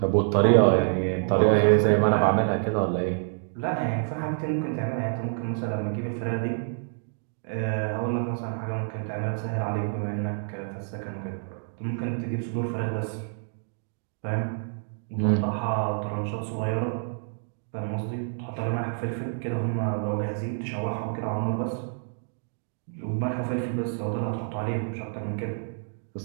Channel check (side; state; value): left; silent; digital silence